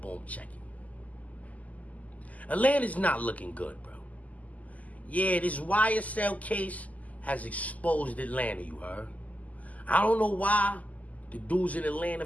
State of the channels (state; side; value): late; right; 0.075 ms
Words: check it. Atlanta's not looking good, bro. Yeah, this YSL case has exposed Atlanta, you heard? I don't know why the dudes in Atlanta